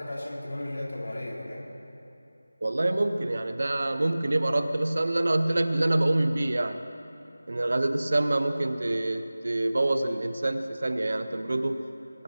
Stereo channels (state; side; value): inverted; both; correlation -0.98